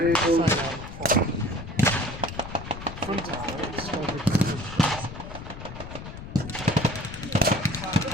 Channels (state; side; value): noise; left; rumble, 11 dB below the sound